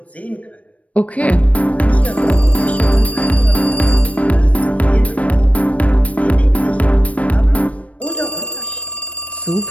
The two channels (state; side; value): late; right; 0.065 ms